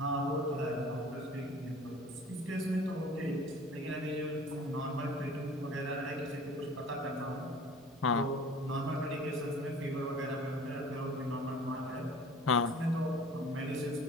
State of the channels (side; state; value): both; normal; correlation 0.45